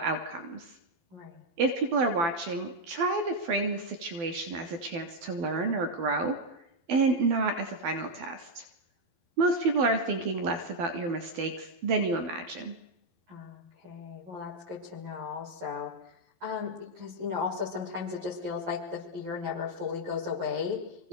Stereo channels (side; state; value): left; late; 12 ms